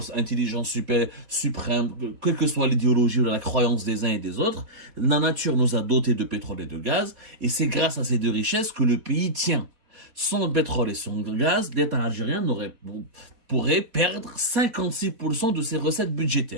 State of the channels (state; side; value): late; left; 4.1 ms